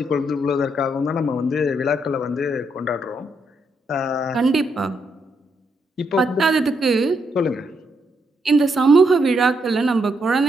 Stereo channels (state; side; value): normal; both; correlation 0.78